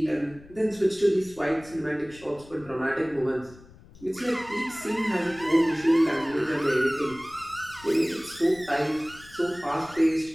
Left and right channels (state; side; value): noise; left; rumble, 22 dB below the sound